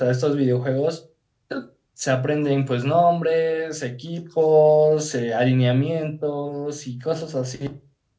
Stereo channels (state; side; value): identical; both; correlation 1.00